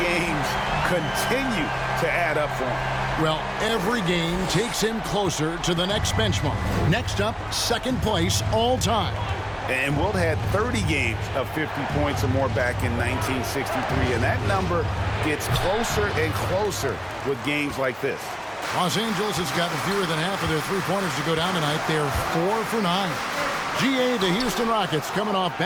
games continue to add up for him. Well, every game takes him closer to the next benchmark. Next up, 2nd place all time. And Wilt had 30 games of 50 points or more back in 1963. And that number gets closer and closer with games like this. Los Angeles has gotten fewer than half of their three-pointers to go down tonight. They're 4 for 9. GA, the Houston Rockets, coming off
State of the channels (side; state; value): both; identical; correlation 1.00